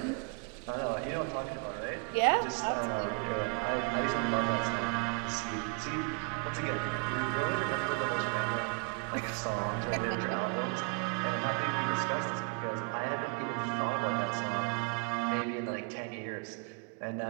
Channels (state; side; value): quieter; left; 32.3 dB